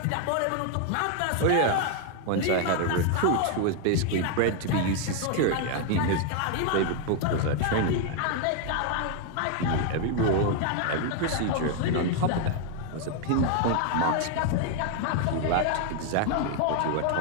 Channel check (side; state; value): both; different; correlation 0.00